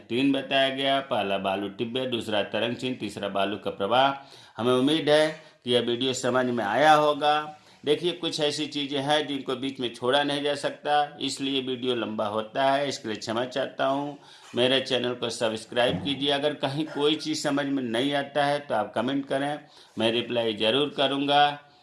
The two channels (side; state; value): both; identical; correlation 1.00